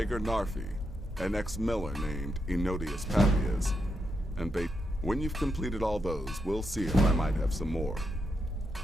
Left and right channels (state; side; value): normal; both; correlation 0.83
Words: Narfi, an ex-miller named Enodius Papias, and when you've completed all those, we'll see if I might have some more.